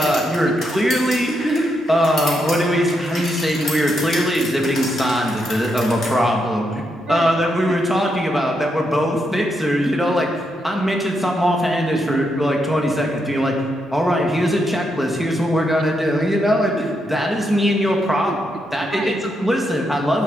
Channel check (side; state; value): both; normal; correlation 0.81